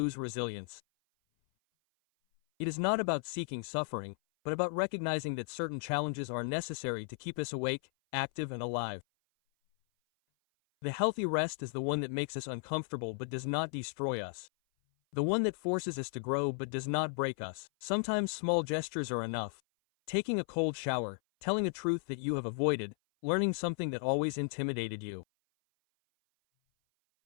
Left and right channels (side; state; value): right; silent; 54 dB below the other